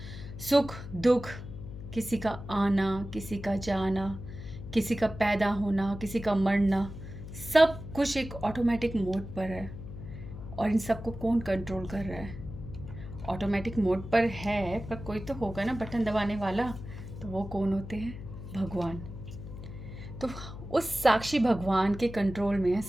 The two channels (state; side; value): noise; left; hum, 11 dB below the sound